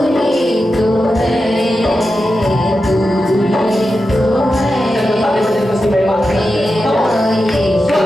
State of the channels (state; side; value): normal; both; correlation 0.90